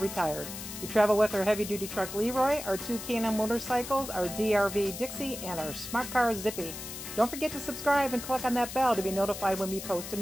We travel with our heavy-duty truck Leroy, our two K&M motorcycles, our DRV Dixie, and our smart car Zippy. Don't forget to subscribe and click on that bell to be notified when we post a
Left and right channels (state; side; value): noise; left; hiss, 9 dB below the sound